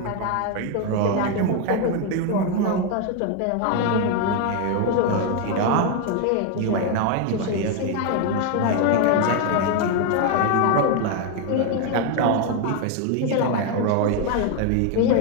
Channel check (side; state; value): both; different; correlation 0.01